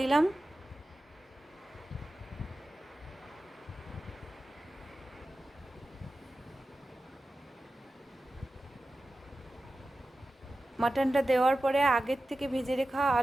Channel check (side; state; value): both; normal; correlation 0.94